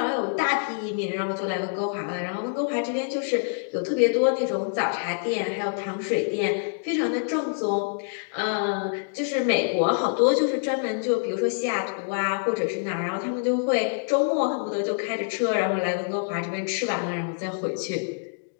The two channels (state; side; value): silent; right; digital silence